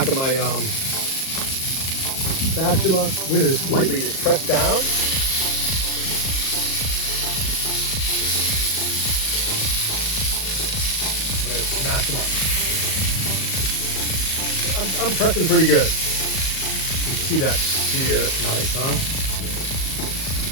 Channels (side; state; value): right; late; 38 ms